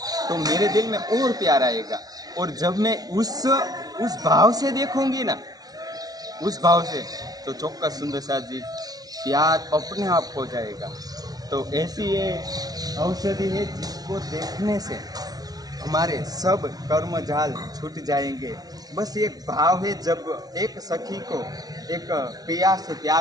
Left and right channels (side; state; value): left; late; 0.19 ms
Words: तो मेरे दिल में और प्यार आएगा। और जब मैं उस भाव से देखूंगी ना, उस भाव से, तो चौक्कस सुंदर सा जी प्यार अपने आप हो जाएगा। तो ऐसी ये औषधि है जिसको देखने से हमारे सब कर्म जाल छूट जाएंगे। बस एक भाव है, जब एक सखी को एक पिया से